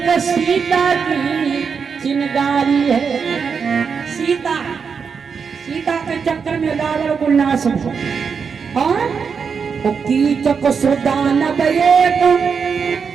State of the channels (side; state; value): left; quieter; 6.0 dB